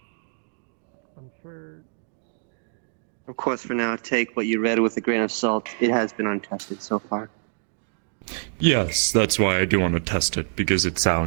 I'm sure. Of course, for now, take what you read with a grain of salt. It has been untested so far. Yes, that's why I do want to test it, because it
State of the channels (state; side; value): silent; left; digital silence